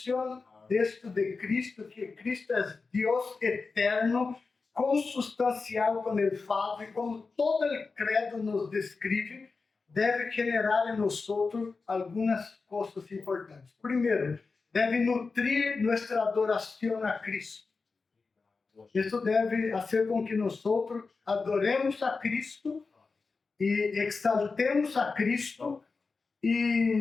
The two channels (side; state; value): right; quieter; 4.3 dB